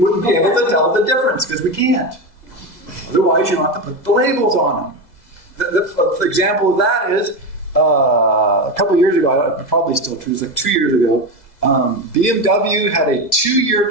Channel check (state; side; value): late; right; 2.0 ms